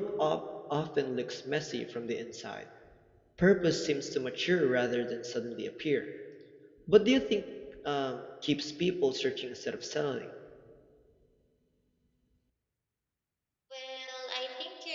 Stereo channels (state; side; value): identical; both; correlation 1.00